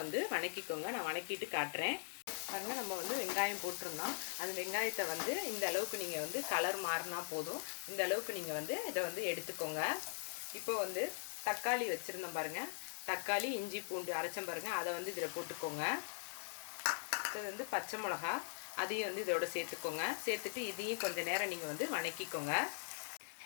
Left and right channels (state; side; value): silent; right; digital silence